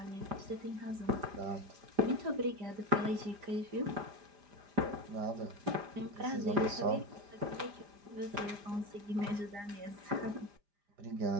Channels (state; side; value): late; left; 5.0 ms